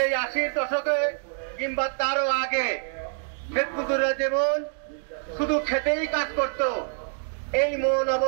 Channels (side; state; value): left; silent; digital silence